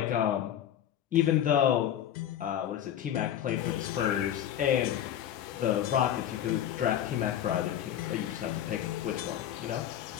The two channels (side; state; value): right; quieter; 10.7 dB